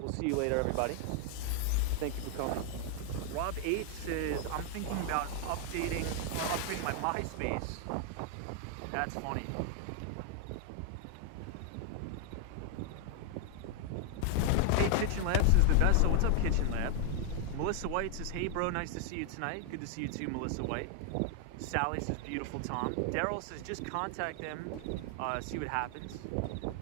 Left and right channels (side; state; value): both; different; correlation 0.00